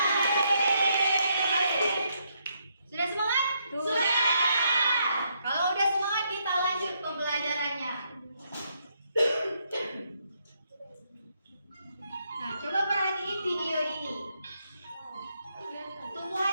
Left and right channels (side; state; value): both; inverted; correlation -0.76